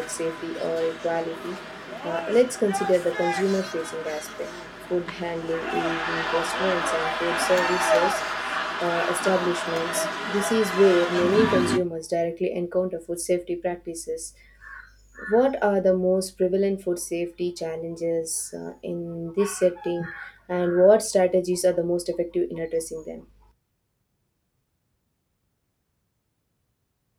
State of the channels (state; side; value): identical; both; correlation 1.00